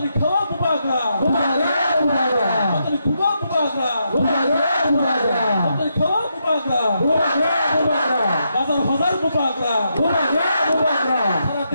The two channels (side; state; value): both; inverted; correlation -0.81